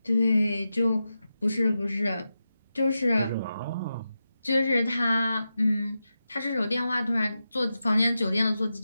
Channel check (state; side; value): inverted; both; correlation -0.90